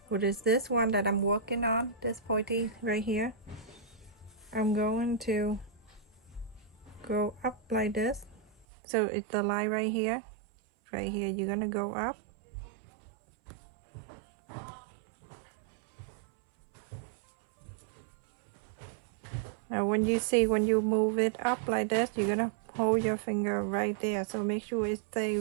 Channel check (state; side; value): drops out; left; at 8.7 s